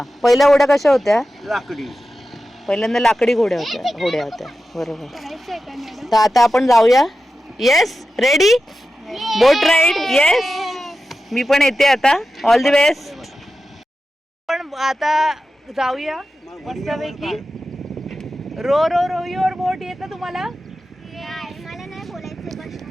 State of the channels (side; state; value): both; normal; correlation 0.92